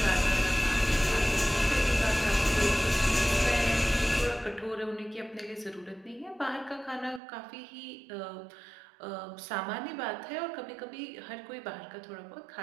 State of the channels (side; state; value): left; drops out; at 7.2 s